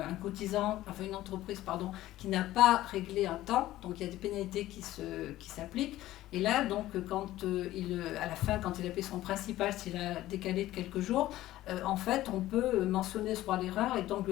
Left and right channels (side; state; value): right; quieter; 15.3 dB